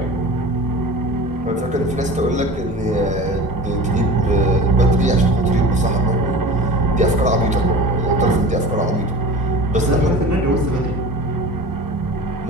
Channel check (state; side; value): normal; both; correlation 0.37